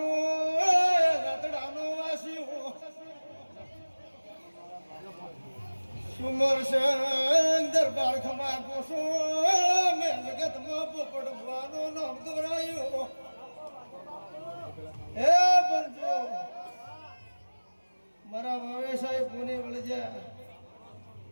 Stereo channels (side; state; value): both; inverted; correlation -1.00